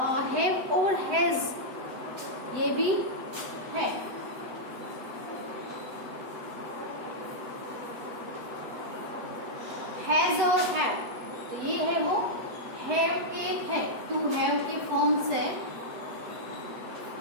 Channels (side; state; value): left; late; 8.0 ms